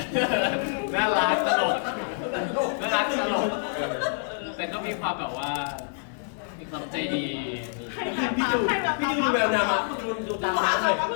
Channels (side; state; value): right; silent; 60 dB below the other